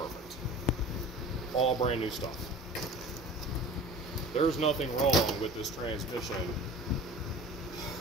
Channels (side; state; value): both; normal; correlation 0.39